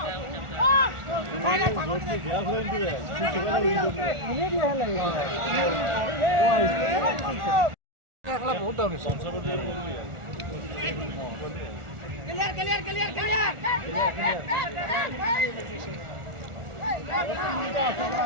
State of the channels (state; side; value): late; left; 1.4 ms